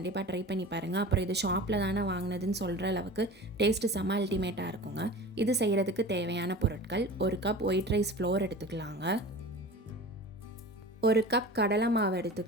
ட்ரை பண்ணி பாருங்கள். அப்புறம் இது ஷாப்பில் தானே வாங்கினதுன்னு சொல்கிற அளவுக்கு டேஸ்ட்டு செம்ம அல்டிமேட்டாக இருக்குங்க. இது செய்கிறதுக்கு தேவையான பொருட்கள்: 1 கப் ஒயிட் ரைஸ் ஃப்ளோர் எடுத்துக்கலாங்க, 1 கப் கடலை மாவு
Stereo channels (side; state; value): both; normal; correlation 0.36